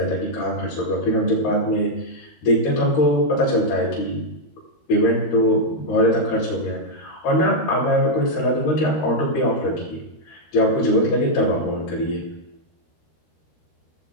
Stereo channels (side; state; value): right; late; 13 ms